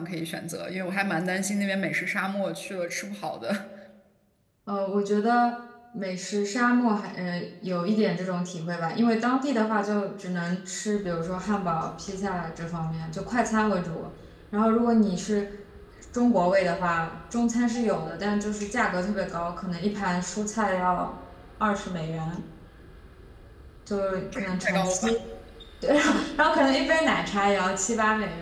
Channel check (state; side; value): identical; both; correlation 1.00